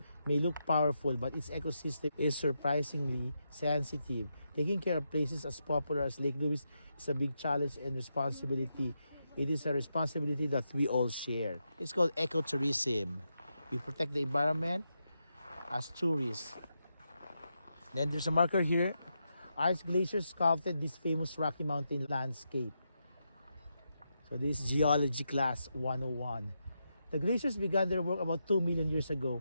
may look powerful, but its ecosystem is surprisingly sensitive. Taking care of places as popular as Lake Louise is a big challenge and responsibility. It is a responsibility that we all share. It's called ecotourism. We protect the environment as tourists. Then there's a marker here. Ice glaciers sculpted this famous Rocky Mountain landscape. So this is Geology Class 101. The glaciers began their work about 2 million years ago.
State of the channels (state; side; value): inverted; both; correlation -0.84